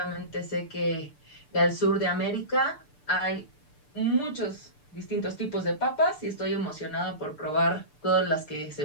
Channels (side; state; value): right; late; 6.8 ms